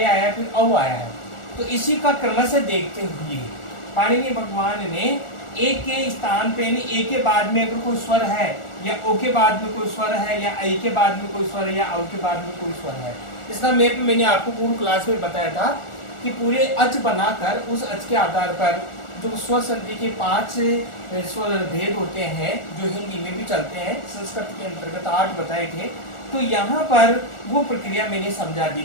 है, फिर औ आया है। तो इसी का क्रमशः देखते हुए पाणिनि भगवान ने ए के स्थान पे यानी ए के बाद में अगर कोई स्वर है या ओ के बाद में कोई स्वर है या आई के बाद में कोई स्वर है या औ के बाद में कोई स्वर है, इसका मैप मैंने आपको पूर्व क्लास में बताया था कि पूरे अच बनाकर उस अच के आधार पर जो स्वर संधि के 5 स्वर भेद होते हैं जो हिंदी में भी चलते हैं, संस्कृत के अंतर्गत 8 बताए थे। तो यहाँ पर वो प्रक्रिया मैंने समझा दी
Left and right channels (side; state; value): right; late; 1.4 ms